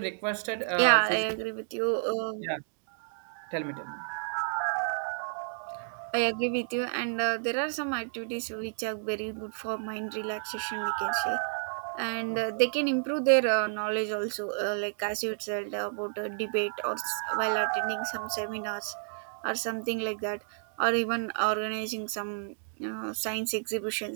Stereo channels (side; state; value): left; silent; digital silence